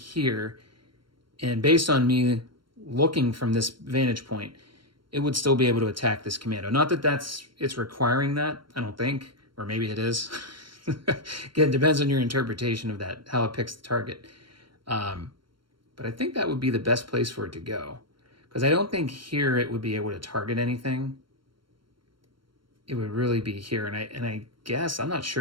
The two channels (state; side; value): late; left; 0.73 ms